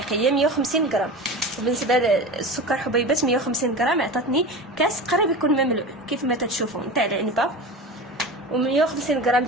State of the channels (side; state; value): both; normal; correlation 0.30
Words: هي 150 غرام. وبالنسبه للسكر حبيبات 150 غرام عطاتني كاس قريب يكون مملوء كيف ما تتشوفوا نتاع العنبه. و150 غرام